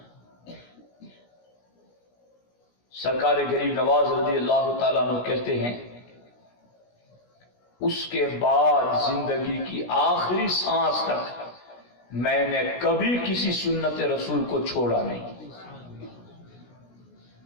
سرکار غریب نواز رضی اللہ تعالیٰ عنہ کہتے ہیں اس کے بعد زندگی کی آخری سانس تک میں نے کبھی کسی سنت رسول کو چھوڑا نہیں۔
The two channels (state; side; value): late; right; 17 ms